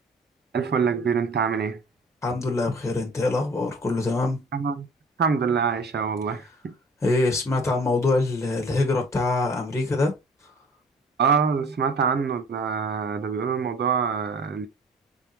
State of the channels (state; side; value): normal; both; correlation 0.49